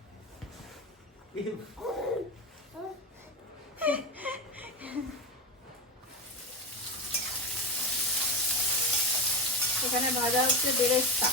এখানে ভাজা হচ্ছে বেরেস্তা,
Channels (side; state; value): both; normal; correlation 0.20